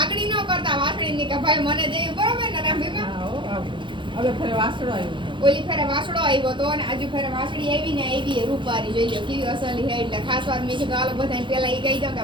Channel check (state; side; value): late; left; 0.23 ms